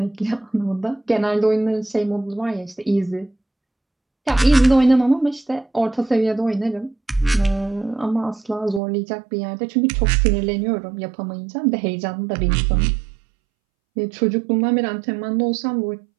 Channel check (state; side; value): drops out; left; at 8.8 s